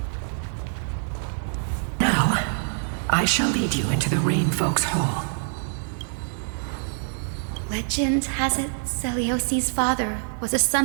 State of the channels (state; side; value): silent; left; 62 dB below the other